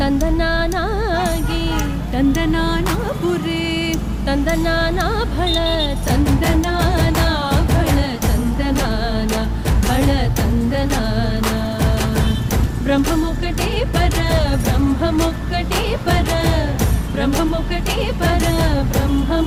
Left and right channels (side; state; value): both; identical; correlation 1.00